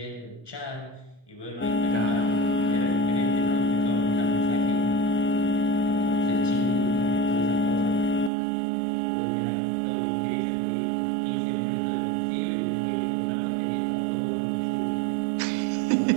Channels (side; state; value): left; drops out; at 8.3 s